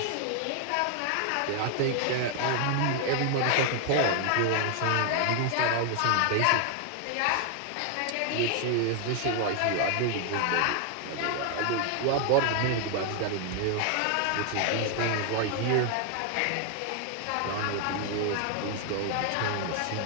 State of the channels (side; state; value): both; different; correlation 0.00